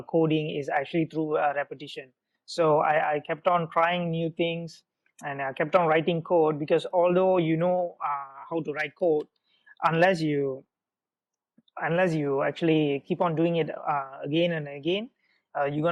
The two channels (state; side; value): identical; both; correlation 1.00